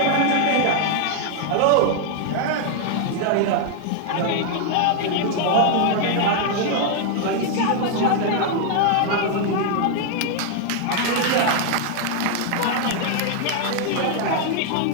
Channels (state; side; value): different; both; correlation 0.00